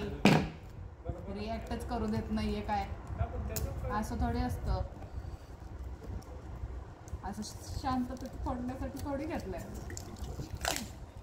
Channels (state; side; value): identical; both; correlation 1.00